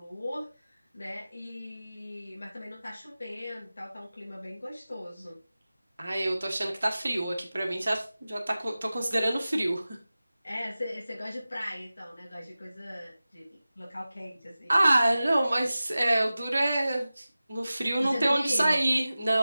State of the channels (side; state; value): both; inverted; correlation -0.96